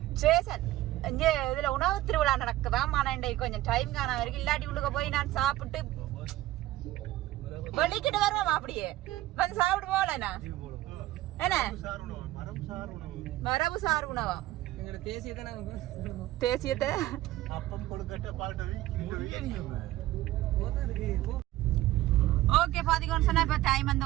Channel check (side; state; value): left; quieter; 15.9 dB